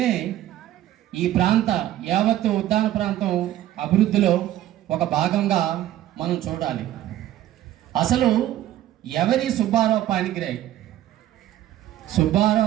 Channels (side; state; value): left; quieter; 13.2 dB